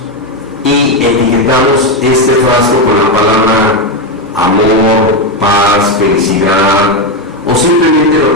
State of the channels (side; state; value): both; normal; correlation 0.08